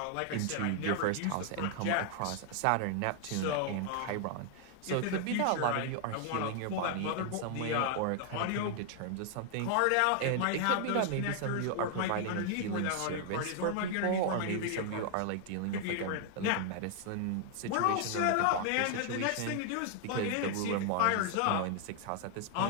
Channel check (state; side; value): different; both; correlation 0.00